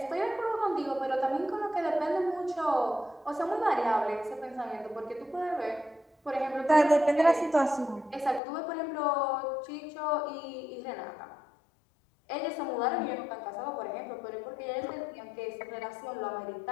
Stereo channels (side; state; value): right; drops out; at 8.4 s